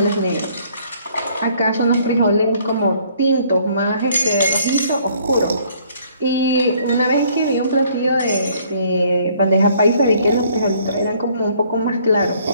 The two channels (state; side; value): inverted; both; correlation -0.61